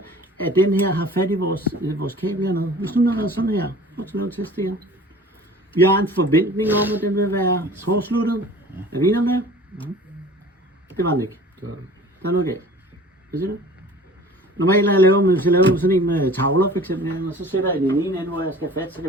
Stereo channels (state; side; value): normal; both; correlation 0.44